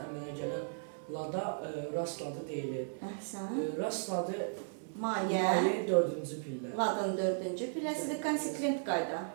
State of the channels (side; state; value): left; silent; digital silence